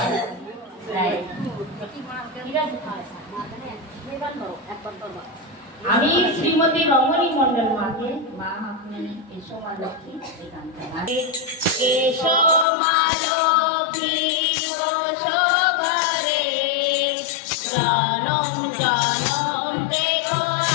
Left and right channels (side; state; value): right; drops out; at 12.7 s